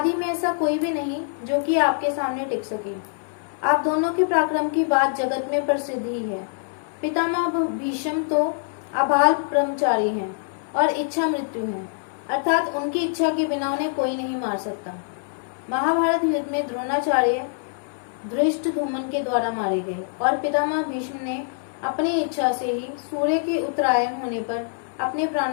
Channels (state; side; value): silent; right; 62 dB below the other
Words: में ऐसा कोई भी नहीं जो कि आपके सामने टिक सके। आप दोनों के पराक्रम की बात जगत में प्रसिद्ध ही है। पितामह भीष्म तो अबाल ब्रह्मचारी हैं और इच्छा मृत्यु है, अर्थात उनकी इच्छा के बिना उन्हें कोई नहीं मार सकता। महाभारत युद्ध में द्रोणाचार्य धृष्टद्युम्न के द्वारा मारे गए और पितामह भीष्म ने अपनी इच्छा से ही सूर्य के उत्तरायण होने पर अपने